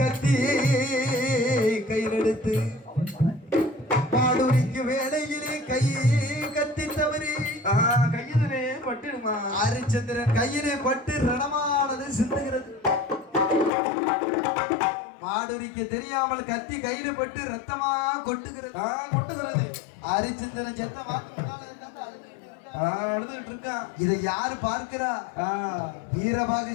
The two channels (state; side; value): drops out; right; at 13.7 s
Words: கையில் எடுத்து மாடுரிக்கு வேலையிலே கை கத்தி தவறி கையிலே பட்டுடுமா? ஹரிச்சந்திரன் கையிலே பட்டு ரணமானது சிந்துகிறது. மாடுரிக்கு தெரியாமல் கத்தி கையில பட்டு ரத்தமா கொட்டுகிறது. ஹரிச்சந்திரன் செத்த மாட்டு அழுதுகிட்டு இருக்கான். இதை யாரு பார்க்கிறா? வீரபாகு